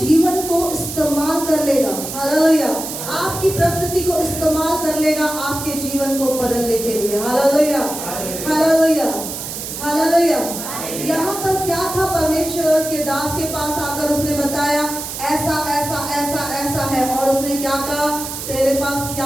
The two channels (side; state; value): right; noise; hiss, 7 dB below the sound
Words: को इस्तेमाल कर लेगा। हालेलुया। आपकी परिस्थिति को इस्तेमाल कर लेगा आपके जीवन को बदलने के लिए। हालेलुया। हालेलुया। हालेलुया। यहाँ पर क्या था? परमेश्वर के दास के पास आकर उसने बताया, ऐसा ऐसा ऐसा ऐसा है। और उसने क्या कहा? तेरे पास